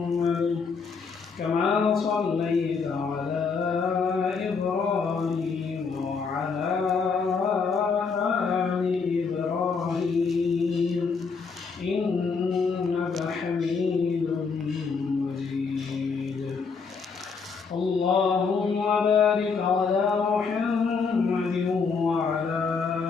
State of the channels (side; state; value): right; quieter; 5.2 dB